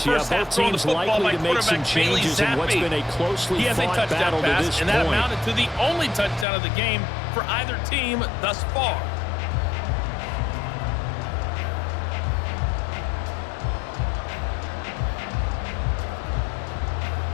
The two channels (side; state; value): right; drops out; at 6.5 s